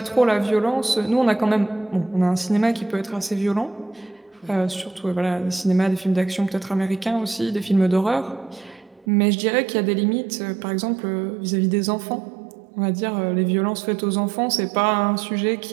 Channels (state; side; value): drops out; left; at 9.1 s